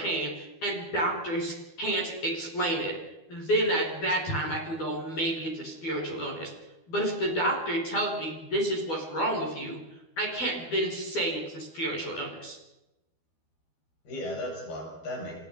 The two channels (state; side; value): late; right; 12 ms